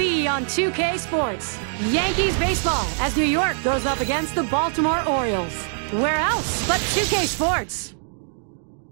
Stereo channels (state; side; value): silent; left; 63 dB below the other